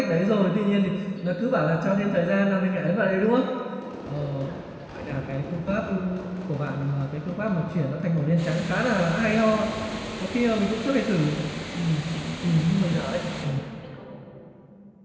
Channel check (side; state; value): both; identical; correlation 1.00